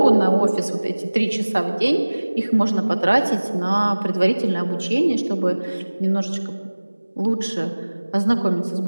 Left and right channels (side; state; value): both; inverted; correlation -1.00